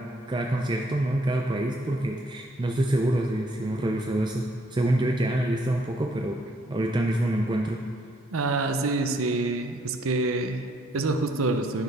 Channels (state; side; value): normal; both; correlation 0.68